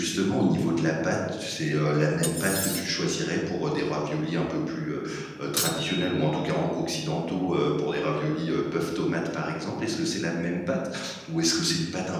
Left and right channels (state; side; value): identical; both; correlation 1.00